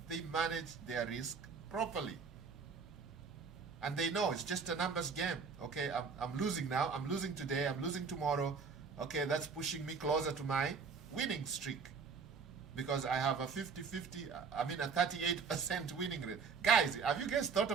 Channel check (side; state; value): left; quieter; 5.5 dB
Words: they manage their risk properly. And they know it's just a numbers game. Okay, I'm losing now. I'm losing today. I'm losing tomorrow. Okay, that's pushing me closer to my winning streak. Because I have a 38% winning rate. Guys, have you guys thought